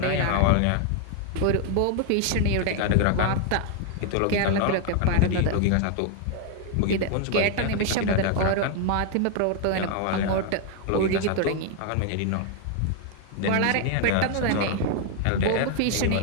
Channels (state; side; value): different; both; correlation 0.00